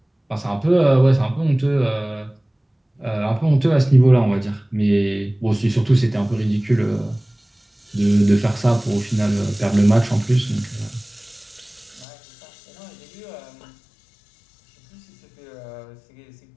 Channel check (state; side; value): drops out; right; at 12.1 s